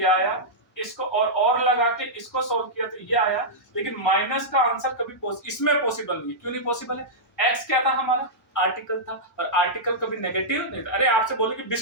आया, इसको और लगा के इसको सॉल्व किया तो ये आया, लेकिन माइनस का आंसर कभी इसमें पॉसिबल नहीं है। क्यों नहीं पॉसिबल है, x क्या था हमारा, आर्टिकल था, और आर्टिकल कभी नेगेटिव नहीं था। अरे आपसे बोले कि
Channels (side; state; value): both; normal; correlation -0.11